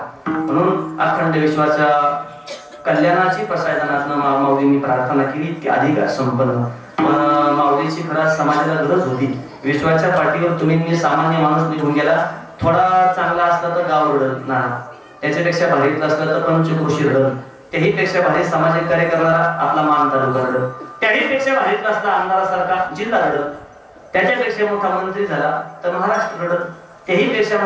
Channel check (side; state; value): both; identical; correlation 1.00